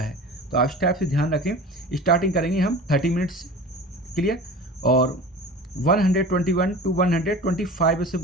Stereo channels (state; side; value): normal; both; correlation 0.37